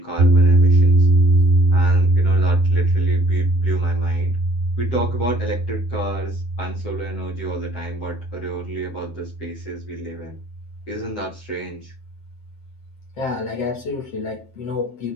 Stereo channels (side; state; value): right; late; 7.7 ms